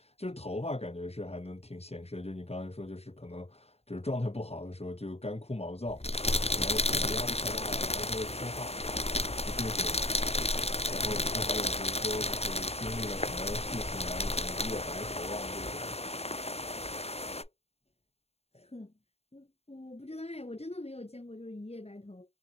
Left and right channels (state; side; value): late; right; 0.30 ms